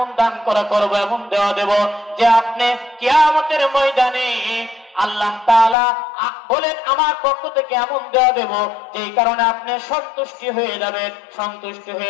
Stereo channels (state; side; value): drops out; right; at 5.8 s